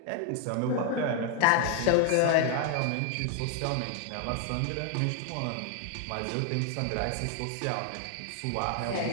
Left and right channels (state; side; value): different; both; correlation 0.00